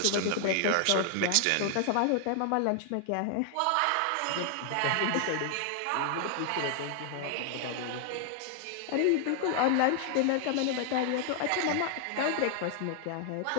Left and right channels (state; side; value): different; both; correlation 0.00